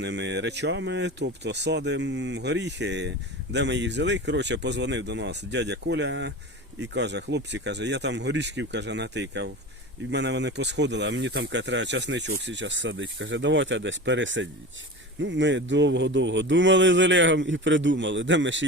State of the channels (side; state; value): both; normal; correlation 0.31